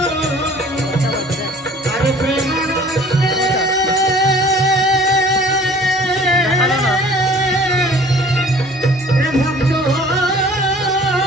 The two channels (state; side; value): normal; both; correlation 0.50